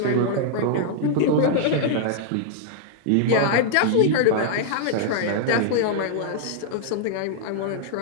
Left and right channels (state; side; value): different; both; correlation -0.01